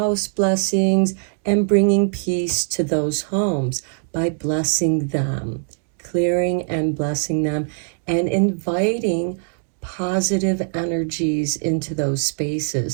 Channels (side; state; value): left; silent; digital silence